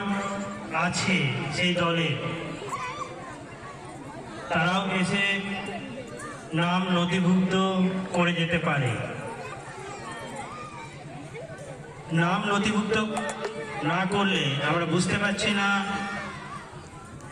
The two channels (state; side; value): identical; both; correlation 1.00